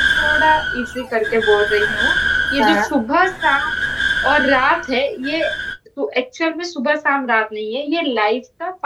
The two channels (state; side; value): identical; both; correlation 1.00